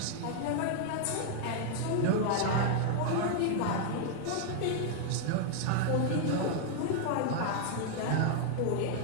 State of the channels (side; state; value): both; different; correlation 0.00